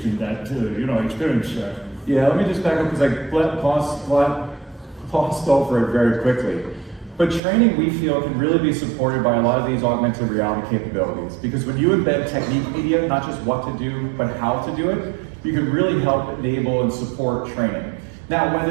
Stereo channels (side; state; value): left; drops out; at 7.4 s